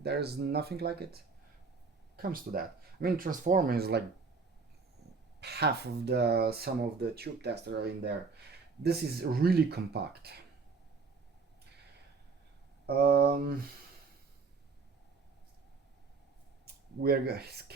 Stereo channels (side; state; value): left; quieter; 4.6 dB